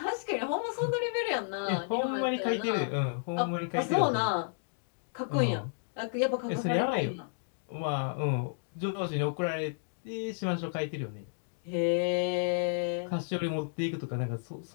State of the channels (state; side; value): silent; right; digital silence